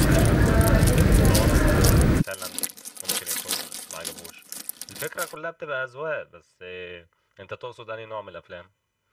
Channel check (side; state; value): both; identical; correlation 1.00